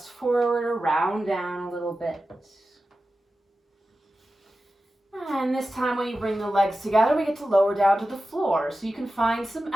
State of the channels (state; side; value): normal; both; correlation 0.93